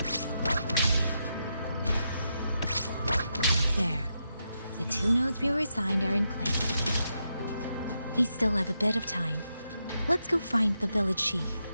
There. The 2 nodes we were assigned are in place. We still have a bit of time. Let's go find the village chief.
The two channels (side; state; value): both; inverted; correlation -0.84